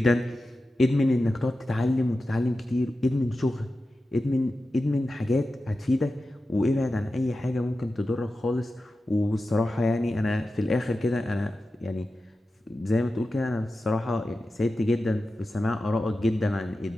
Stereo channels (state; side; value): normal; both; correlation 0.93